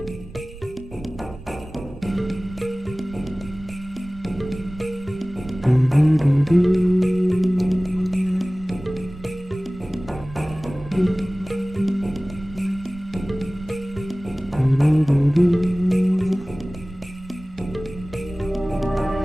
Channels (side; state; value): right; noise; rumble, 17 dB below the sound